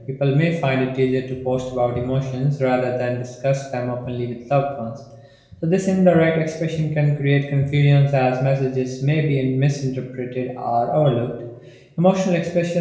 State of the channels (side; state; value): both; identical; correlation 1.00